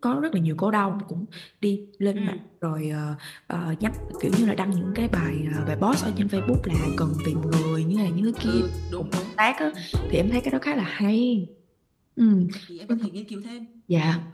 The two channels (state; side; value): identical; both; correlation 1.00